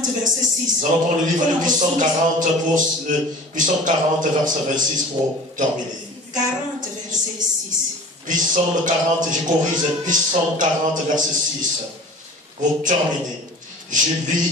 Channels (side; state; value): both; normal; correlation 0.42